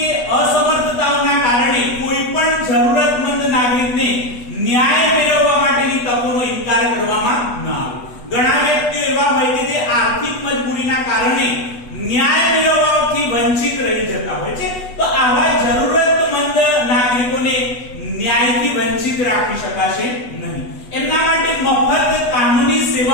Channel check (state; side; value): late; right; 8.2 ms